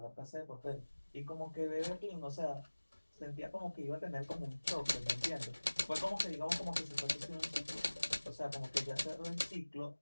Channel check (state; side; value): inverted; both; correlation -1.00